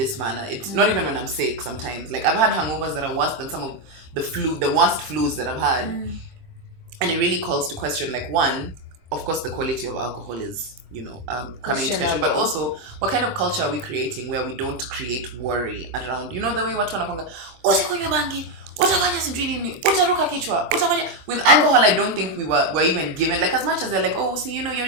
manner. It's not even when I'm sick sometimes. Like I've had hangovers that are worse than some of the worst flus that I've had. And it really calls to question, like, one, of course the quality of alcohol is, coming into question, but also what kind of culture are we creating where we don't create worry around, the way watu wanakwanga usikunywe bangi, utafanya sijui nini, utaruka kichwa, utafanya. With alcohol, I don't think we're even given, like, as much as they're like, oh, see,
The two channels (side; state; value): left; late; 23 ms